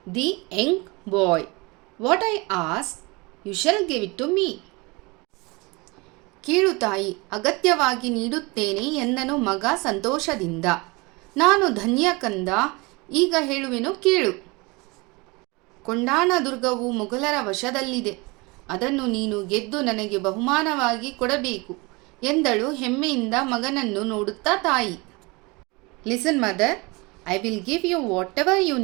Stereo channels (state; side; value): quieter; left; 26.0 dB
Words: the young boy. What I ask you shall give it to me. ಕೇಳು ತಾಯಿ, ಅಗತ್ಯವಾಗಿ ನೀಡುತ್ತೇನೆ ಎಂದನು ಮಗ ಸಂತೋಷದಿಂದ। ನಾನು ಧನ್ಯ ಕಂದ, ಈಗ ಹೇಳುವೆನು ಕೇಳು। ಕೊಂಡಾಣ ದುರ್ಗವು ಮೊಘಲರ ವಶದಲ್ಲಿದೆ, ಅದನ್ನು ನೀನು ಗೆದ್ದು ನನಗೆ ಬಹುಮಾನವಾಗಿ ಕೊಡಬೇಕು ಎಂದಳು ಹೆಮ್ಮೆಯಿಂದ ಮಗನನ್ನು ನೋಡುತ್ತಾ ತಾಯಿ। Listen mother, I will give you whatever you